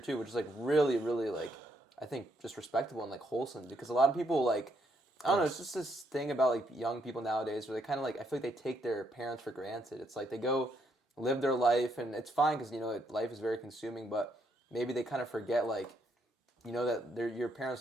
which is, like, really, really, like, I think just respectable and, like, wholesome. Because a lot of people, like, I don't know, it's just this thing about, like, young people nowadays where they kind of, like, I feel like they take their parents for granted. It's like they go live their life, and it's fine because, you know, life is very consuming, but maybe they kind of forget, like, you know, that your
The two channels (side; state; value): both; normal; correlation 0.74